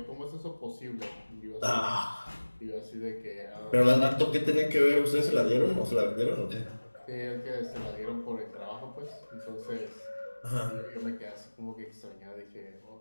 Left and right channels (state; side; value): inverted; both; correlation -1.00